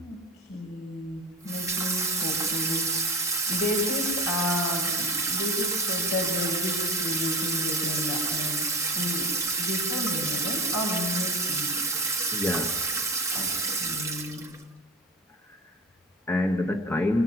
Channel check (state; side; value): normal; both; correlation 0.30